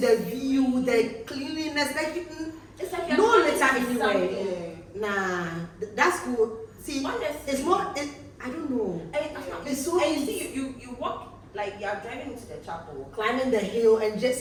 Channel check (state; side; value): identical; both; correlation 1.00